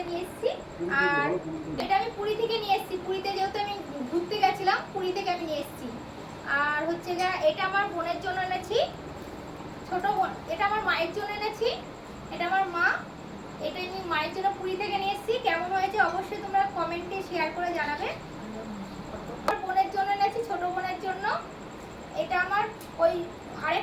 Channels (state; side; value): identical; both; correlation 1.00